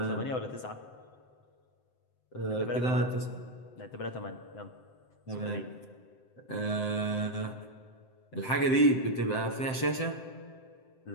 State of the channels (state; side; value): late; right; 7.8 ms